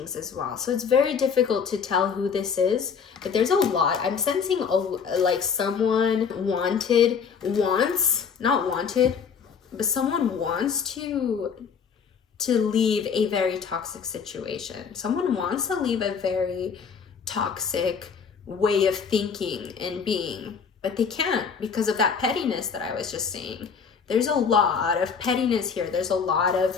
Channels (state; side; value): quieter; right; 6.3 dB